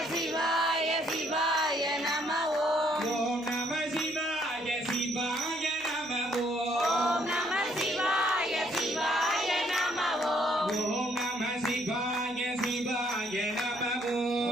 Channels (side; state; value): left; noise; hum, 30 dB below the sound